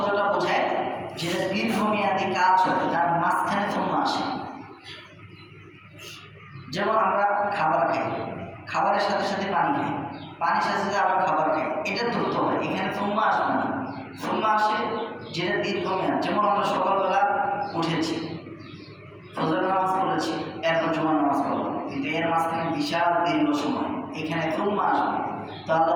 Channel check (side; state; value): both; identical; correlation 1.00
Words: বোঝায় যেটা দীর্ঘমেয়াদী কাজ হয়, তার মাঝখানে সুম্মা আসে। যেমন আমরা খাবার খাই, খাবারের সাথে সাথে পানি খাই, পানির সাথে সাথে আবার খাবার খাই, এটা দ্রুত হয়। এখানে সুম্মা আসবে না, সুম্মা আসে যেটা দীর্ঘমেয়াদ। যেমন আমরা সকালবেলা উঠেছি, ফজর নামাজ পড়েছি, এরপর জুমার নামাজ পড়লাম, কিন্তু এর মাঝখানে বিশাল দীর্ঘ সময়, এখানে সুম্মা আসবে। তো আল্লাহ